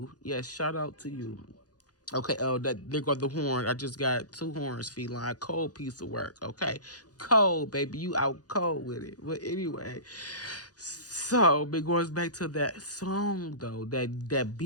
Yes, shout out to you. Okay, oh, that there go the horn. I just got two horns, feline. Cold piece of work. Okay, cold, baby. You out cold with it. But anyway, so it goes back to that song though. That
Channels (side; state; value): right; late; 0.68 ms